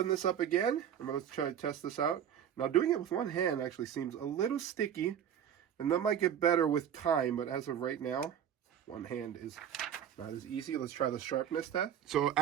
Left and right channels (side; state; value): left; quieter; 9.3 dB